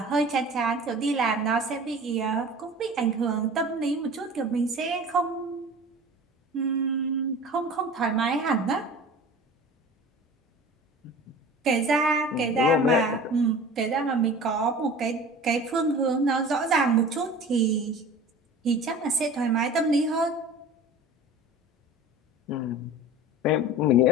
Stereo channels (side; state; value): both; normal; correlation 0.40